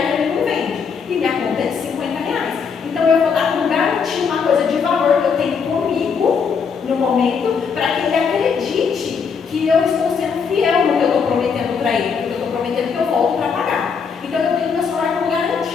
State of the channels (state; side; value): quieter; right; 6.0 dB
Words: ele não vende. E minha conta é de R$50. Então eu vou dar como garantia uma coisa de valor que eu tenho comigo no momento, para que ele acredite que eu estou sendo fiel no que eu estou prometendo para ele, porque eu estou prometendo que eu volto para pagar. Então eu tenho meu celular como